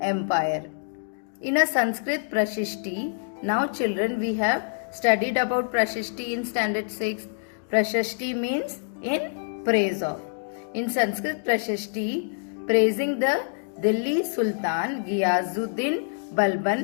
empire. In a Sanskrit Prashasti, now children, we have studied about Prashasti in standard 6. Prashasti means in praise of. In Sanskrit Prashasti, praising the Delhi Sultan Ghiyazuddin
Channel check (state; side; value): silent; right; digital silence